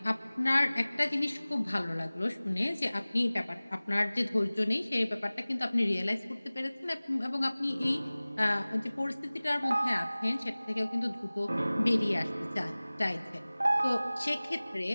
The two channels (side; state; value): both; inverted; correlation -0.99